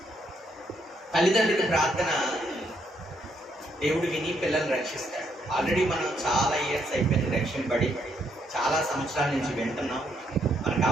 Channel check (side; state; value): both; normal; correlation 0.74